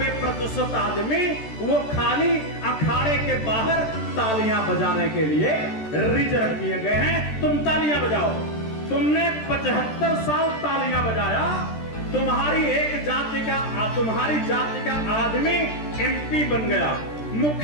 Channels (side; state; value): right; late; 13 ms